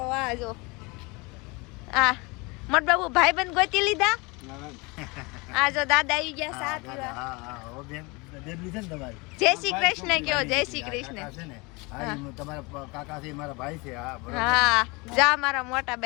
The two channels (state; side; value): quieter; right; 26.8 dB